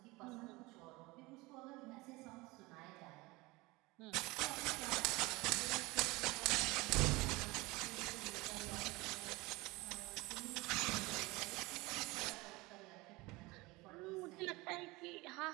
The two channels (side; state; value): left; quieter; 22.6 dB